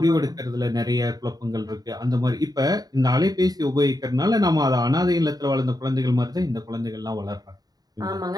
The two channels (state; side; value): late; left; 0.18 ms